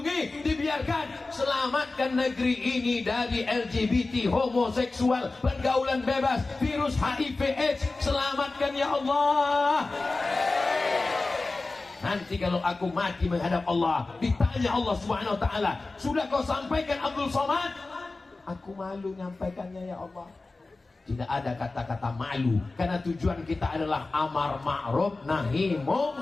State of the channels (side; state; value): right; quieter; 3.4 dB